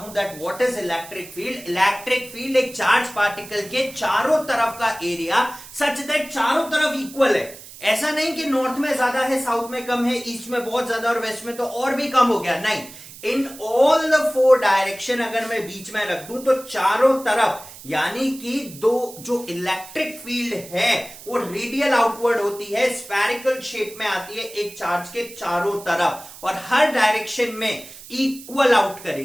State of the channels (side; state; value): right; noise; hiss, 17 dB below the sound